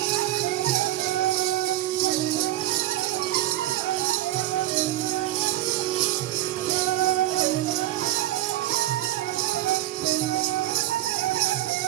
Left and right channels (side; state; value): left; quieter; 14.9 dB